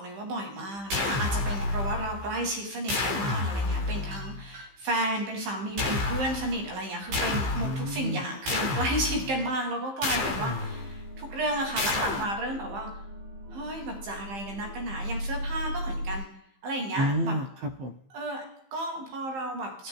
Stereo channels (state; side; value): late; left; 15 ms